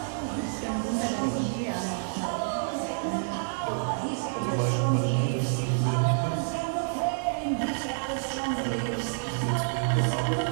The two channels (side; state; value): left; silent; 57 dB below the other